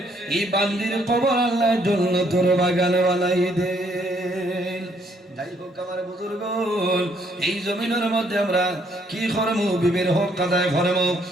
এই বান্দির কবর আল্লাহ জান্নাতের বাগান বানাই দে। যাই হোক আমার বুজুর্গ এই জমিনের মধ্যে আমরা কি করবো বিবির হক আদায় করবো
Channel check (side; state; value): both; normal; correlation 0.68